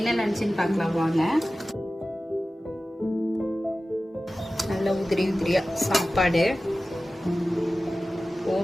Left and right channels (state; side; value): normal; both; correlation 0.95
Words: லஞ்சுன்னு பார்க்கலாம் வாங்க. நல்ல உதிரி உதிரியா சாப்பாடு